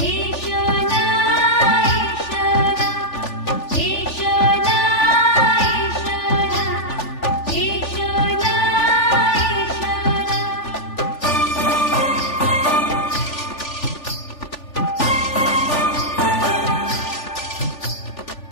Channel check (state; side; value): late; right; 3.4 ms